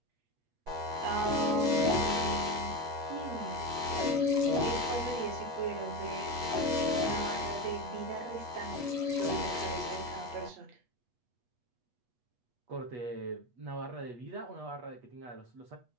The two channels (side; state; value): left; late; 8.3 ms